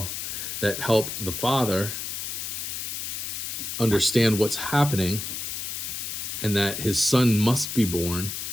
that help the father understand what's happening and that his son must be born.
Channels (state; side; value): noise; left; hiss, 5 dB below the sound